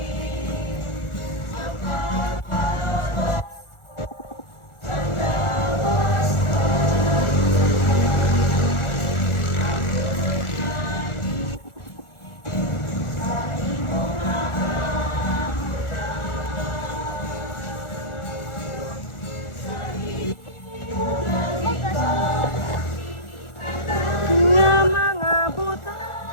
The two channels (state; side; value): late; right; 1.4 ms